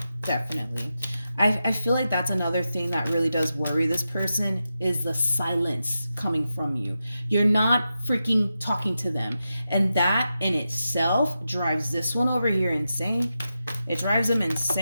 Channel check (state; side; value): inverted; both; correlation -0.90